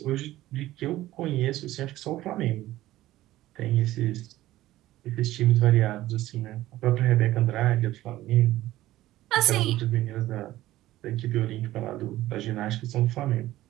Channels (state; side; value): quieter; left; 15.6 dB